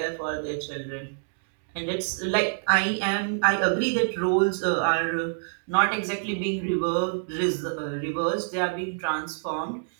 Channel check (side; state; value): left; silent; digital silence